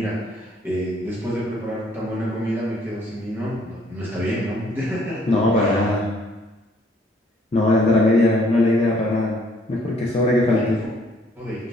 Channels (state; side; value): normal; both; correlation 0.63